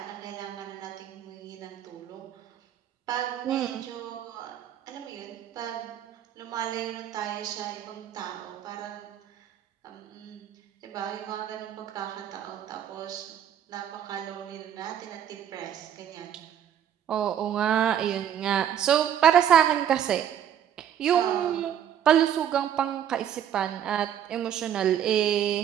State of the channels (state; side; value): quieter; left; 9.8 dB